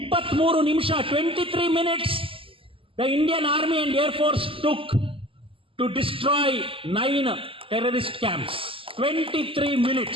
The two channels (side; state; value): left; late; 0.26 ms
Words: ನಿಮಿಷ 23 minutes the Indian Army and Air Force took to destroy 9 terrorist camps. 23